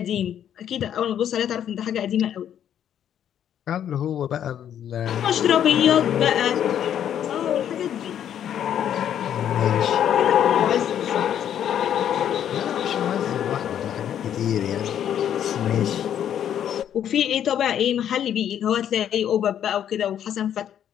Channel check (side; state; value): right; quieter; 9.8 dB